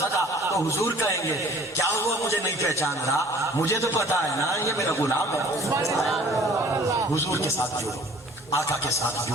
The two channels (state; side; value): normal; both; correlation 0.51